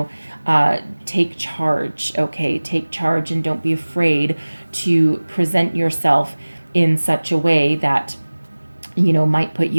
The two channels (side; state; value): both; inverted; correlation -1.00